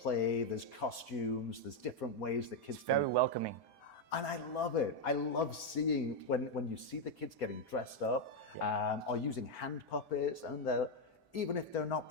there's costumes, there's different ways that kids Very welcoming. And I love it. I love seeing when you see the kids getting dressed up or using hand puppets, and even if they're not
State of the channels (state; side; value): late; right; 1.8 ms